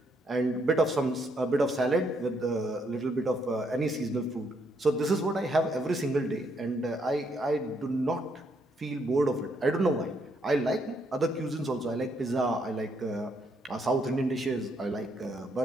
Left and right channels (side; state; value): both; normal; correlation 0.74